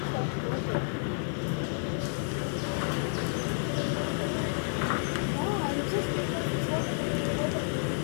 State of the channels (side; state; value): right; silent; digital silence